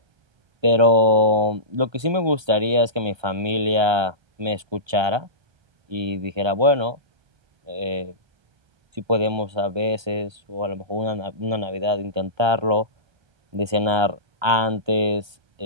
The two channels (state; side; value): late; left; 1.3 ms